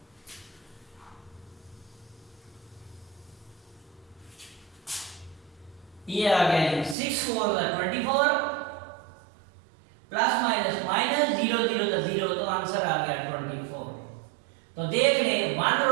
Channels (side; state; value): left; drops out; at 7.0 s